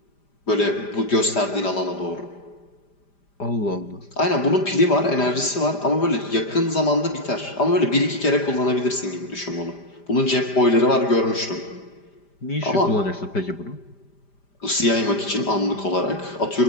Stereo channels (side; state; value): right; late; 5.0 ms